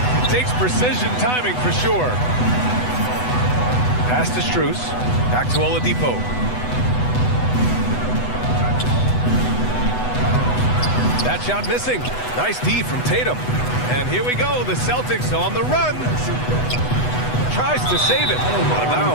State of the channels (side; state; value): right; late; 8.1 ms